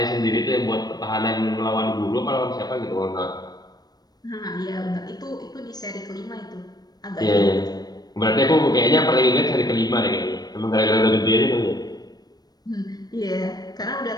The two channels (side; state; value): right; late; 0.19 ms